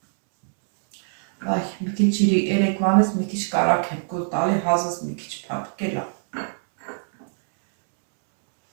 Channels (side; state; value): left; silent; digital silence